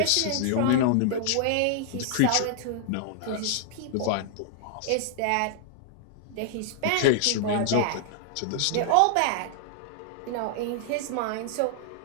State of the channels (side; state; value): both; different; correlation -0.01